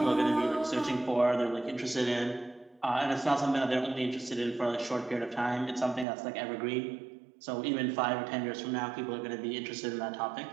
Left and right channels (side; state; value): left; drops out; at 6.1 s